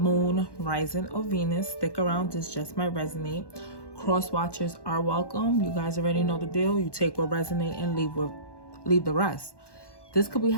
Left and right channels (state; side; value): late; right; 1.1 ms